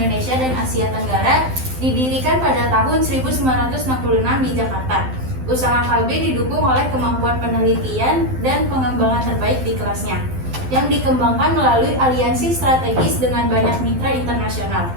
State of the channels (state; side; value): late; left; 12 ms